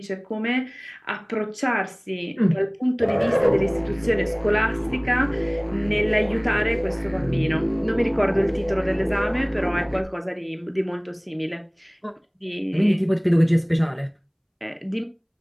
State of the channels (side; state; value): both; identical; correlation 1.00